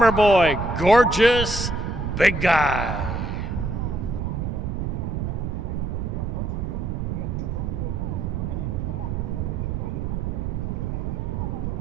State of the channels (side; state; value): right; noise; rumble, 2 dB below the sound